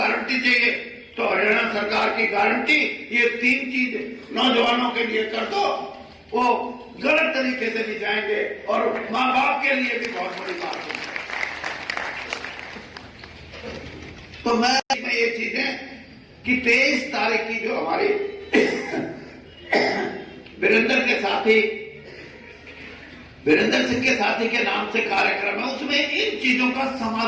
चाहिए, तो हरियाणा सरकार की गारंटी, ये 3 चीज नौजवानों के लिए कर दो, वो गलत तरीके से नहीं जाएंगे, और मां बाप के लिए भी बहुत बड़ी बात है। तो मैं ये चीजें कि 23 तारीख की जो हमारी वीरेंद्र के साथी वीरेंद्र सिंह के साथी के नाम से कार्यक्रम है, उसमें इन चीजों का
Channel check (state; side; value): identical; both; correlation 1.00